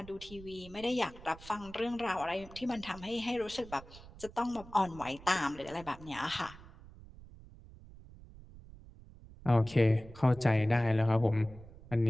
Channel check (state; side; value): noise; right; rumble, 19 dB below the sound